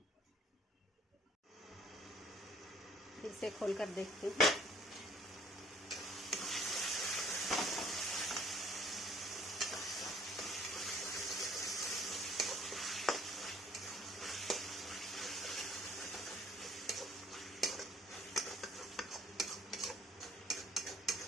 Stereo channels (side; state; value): both; normal; correlation 0.58